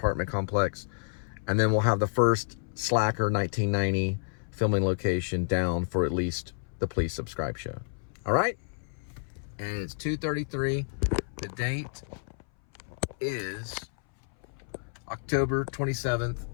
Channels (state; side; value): silent; right; 58 dB below the other